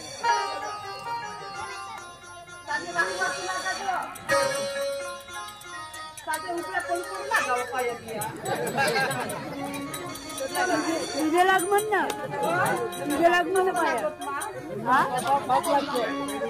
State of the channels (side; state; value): both; identical; correlation 1.00